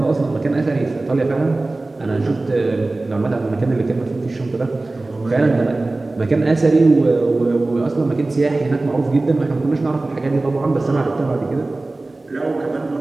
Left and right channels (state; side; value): quieter; left; 3.1 dB